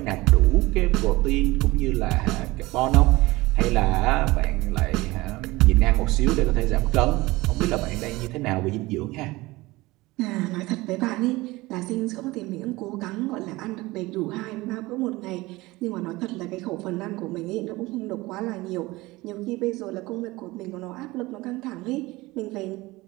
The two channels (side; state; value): left; quieter; 20.6 dB